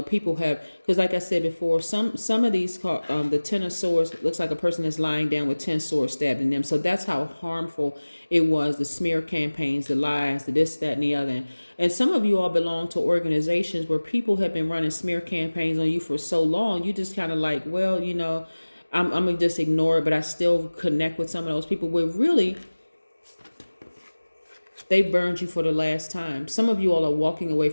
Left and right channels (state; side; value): inverted; both; correlation -1.00